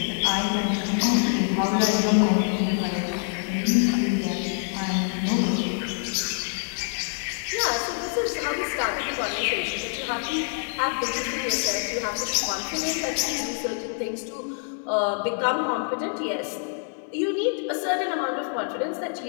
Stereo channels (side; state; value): right; silent; 59 dB below the other